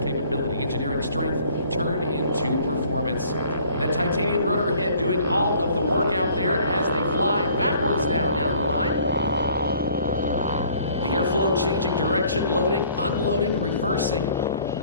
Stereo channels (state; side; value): inverted; both; correlation -0.56